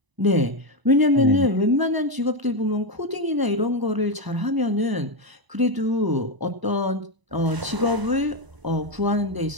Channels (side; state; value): left; late; 1.0 ms